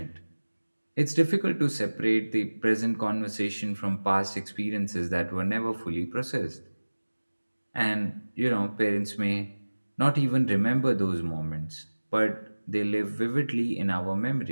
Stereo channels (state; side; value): inverted; both; correlation -1.00